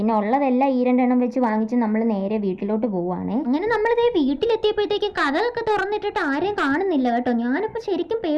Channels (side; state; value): both; identical; correlation 1.00